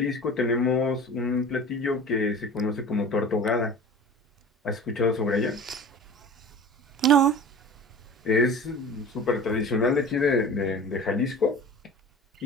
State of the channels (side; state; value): both; normal; correlation 0.38